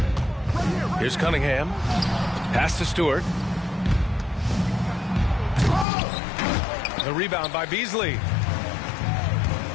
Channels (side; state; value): right; drops out; at 5.9 s